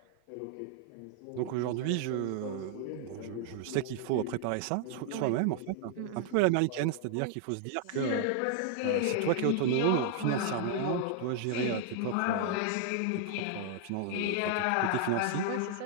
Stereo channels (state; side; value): different; both; correlation 0.00